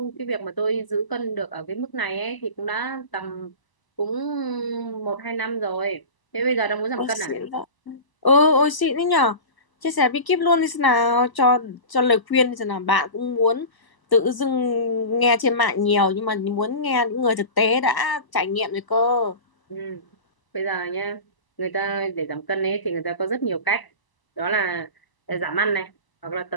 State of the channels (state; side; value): late; right; 1.0 ms